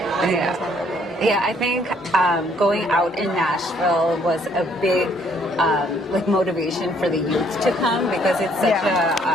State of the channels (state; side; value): normal; both; correlation 0.65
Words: think was memorable. Yeah, I think going out in Nashville was a big like motivation for the youth to come, because it's such